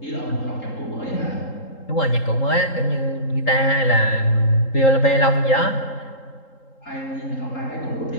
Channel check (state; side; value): late; right; 3.8 ms